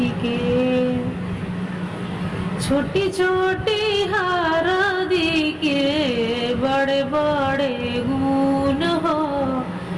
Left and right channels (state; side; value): identical; both; correlation 1.00